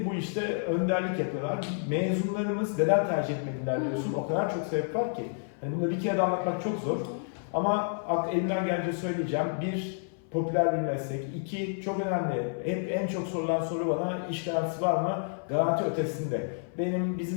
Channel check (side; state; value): right; silent; 55 dB below the other